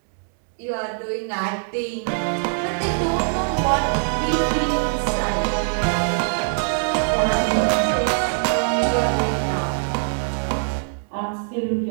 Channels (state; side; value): silent; left; 64 dB below the other